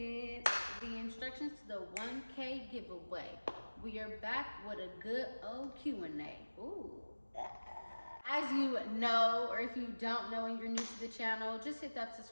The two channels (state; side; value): inverted; both; correlation -1.00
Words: the instructions to the 1K giveaway. We are back with a good old Q&A. Ooh. As you know, or if you don't know and you're new to the channel, just hit that